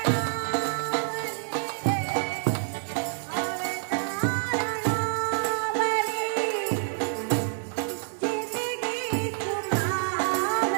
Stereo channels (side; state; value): left; silent; digital silence